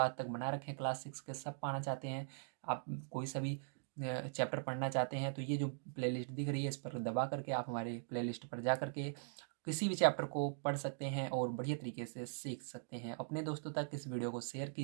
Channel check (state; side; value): silent; left; digital silence